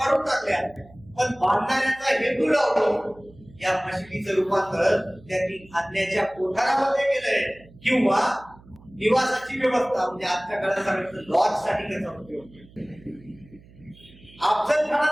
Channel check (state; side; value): noise; right; hum, 24 dB below the sound